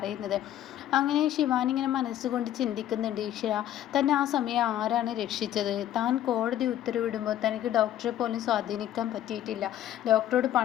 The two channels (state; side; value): quieter; right; 12.1 dB